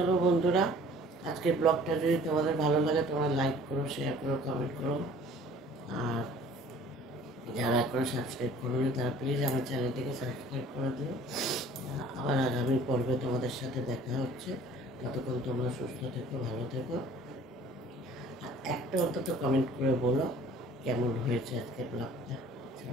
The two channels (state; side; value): normal; both; correlation 0.51